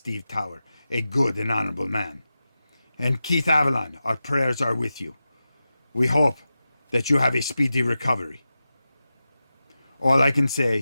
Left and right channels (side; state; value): both; inverted; correlation -0.92